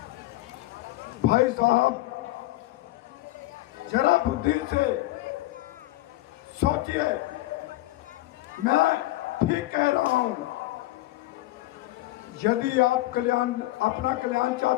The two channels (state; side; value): quieter; right; 17.7 dB